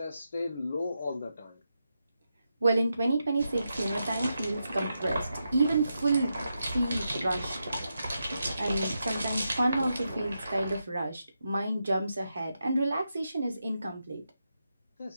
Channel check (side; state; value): both; inverted; correlation -0.86